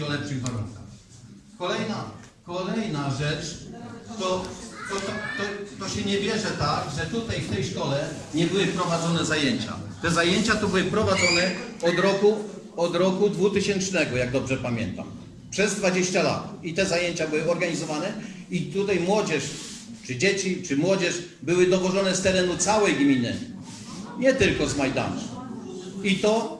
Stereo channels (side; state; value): both; identical; correlation 1.00